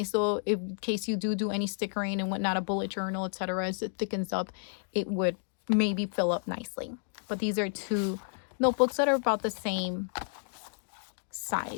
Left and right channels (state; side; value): silent; right; digital silence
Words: though, in case you do any stickering and whatnot, a bullet journal, etc. As it thickens up, it would maybe fill up nicely. But these are two notebooks that are about the same